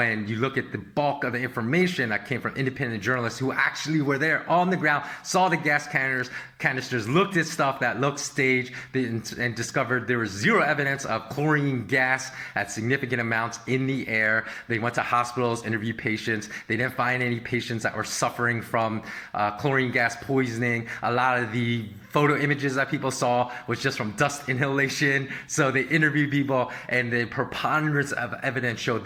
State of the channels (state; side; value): identical; both; correlation 1.00